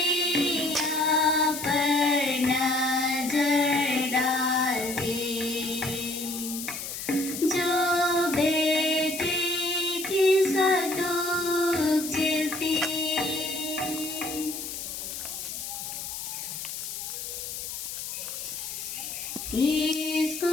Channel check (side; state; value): left; noise; hiss, 7 dB below the sound